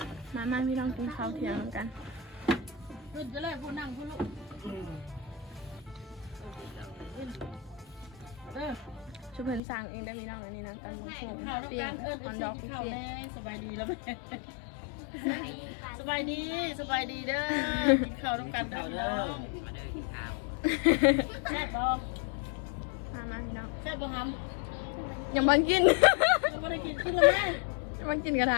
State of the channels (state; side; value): drops out; right; at 9.6 s